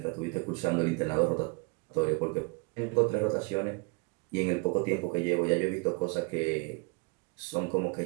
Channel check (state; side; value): quieter; left; 30.8 dB